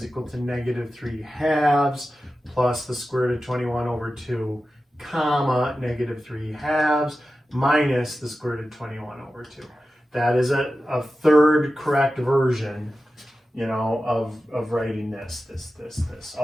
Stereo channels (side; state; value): both; normal; correlation 0.93